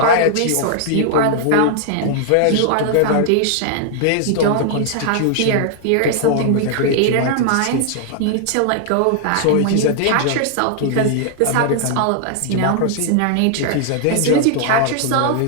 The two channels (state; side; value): different; both; correlation 0.00